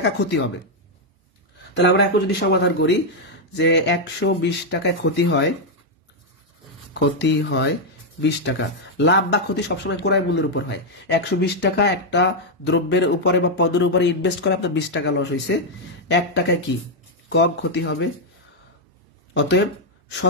ক্ষতি হবে। তাহলে আমরা এখন যদি সমাধান করি যে 120 টাকায় ক্ষতি হয় 20 টাকা, লাভ বা ক্ষতি সবসময় ক্রয় মূল্যের উপর হয়। 120 টাকা একটা দ্রব্যের উপরে বা পণ্যের উপরে ইনভেস্ট করে আপনার 20 টাকা লস হয়েছে, 1 টাকায় কি কম ক্ষতি হবে। অতএব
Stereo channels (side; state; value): both; normal; correlation 0.00